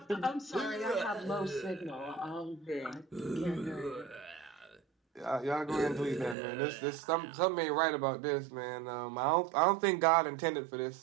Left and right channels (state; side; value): drops out; left; at 6.4 s